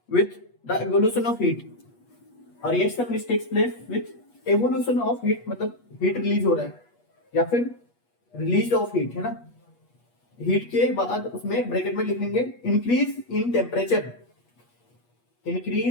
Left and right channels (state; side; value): late; right; 8.3 ms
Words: with the evolution of heat, a reaction which takes place with evolution of heat मतलब हीट रिलीज हो रहा है या फिर रिलीज ऑफ हीट है ना, हीट के बाद उसमें ब्रैकेट में लिखेंगे increase in temperature,